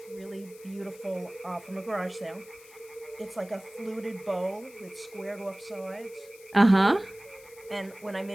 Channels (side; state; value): left; noise; hiss, 22 dB below the sound